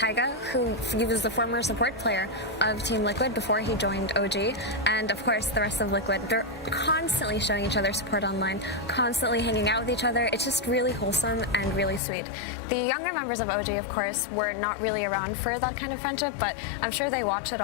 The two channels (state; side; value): drops out; right; at 12.0 s